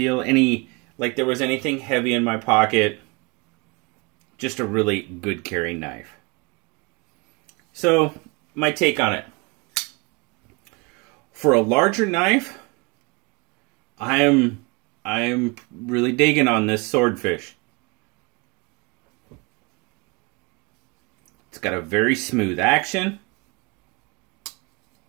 like there was anything heavy in my pocket. Just a really good carry knife. So, my take on it. For a larger knife, I am really digging on this Swordfish. It's got a very smooth action.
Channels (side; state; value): left; quieter; 28.3 dB